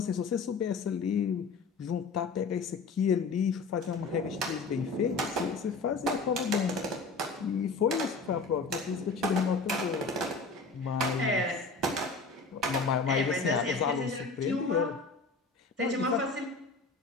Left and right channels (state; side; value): quieter; right; 4.1 dB